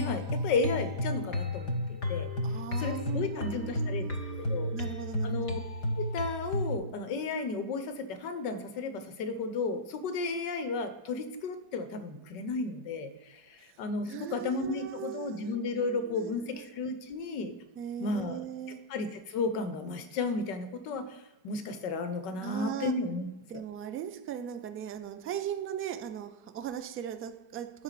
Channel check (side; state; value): right; late; 5.3 ms